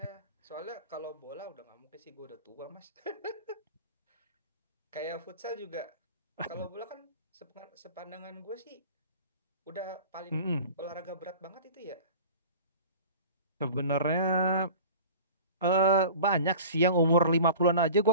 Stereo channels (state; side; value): inverted; both; correlation -0.40